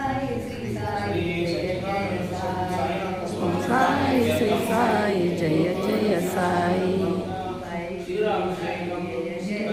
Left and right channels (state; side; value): identical; both; correlation 1.00